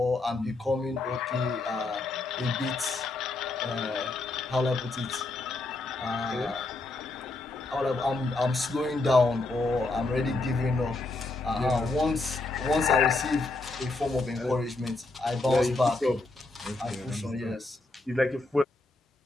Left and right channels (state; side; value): quieter; right; 3.2 dB